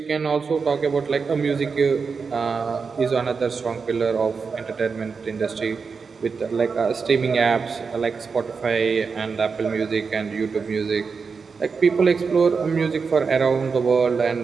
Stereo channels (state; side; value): quieter; left; 5.2 dB